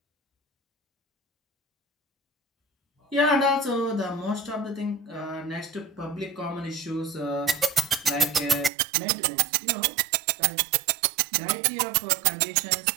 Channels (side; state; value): left; drops out; at 8.7 s